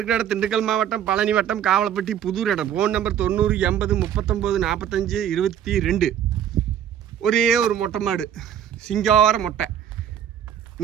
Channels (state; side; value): quieter; left; 9.7 dB